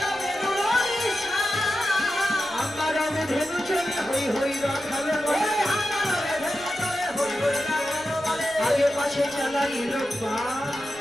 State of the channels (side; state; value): left; noise; rumble, 26 dB below the sound